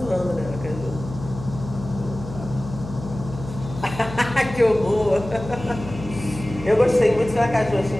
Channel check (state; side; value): noise; left; hum, 11 dB below the sound